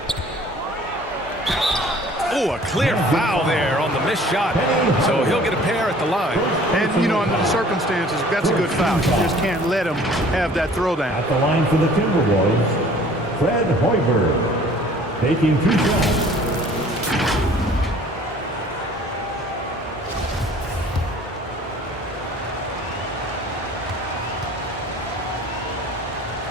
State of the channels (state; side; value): normal; both; correlation 0.51